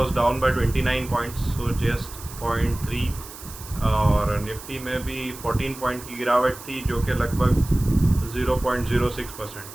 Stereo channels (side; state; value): right; noise; hiss, 15 dB below the sound